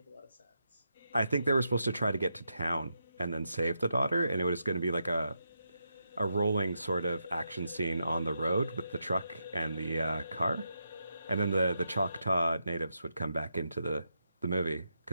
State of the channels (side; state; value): both; inverted; correlation -0.84